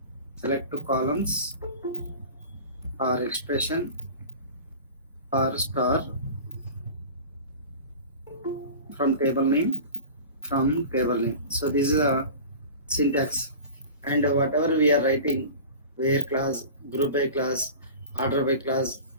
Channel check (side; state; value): both; inverted; correlation -0.37